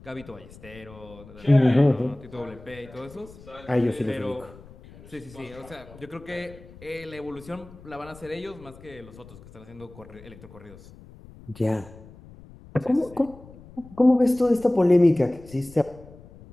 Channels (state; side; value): noise; left; rumble, 20 dB below the sound